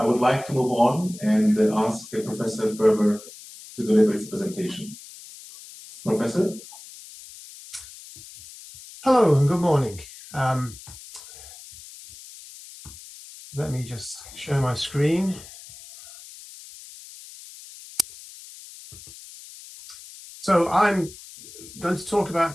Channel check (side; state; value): left; noise; hiss, 17 dB below the sound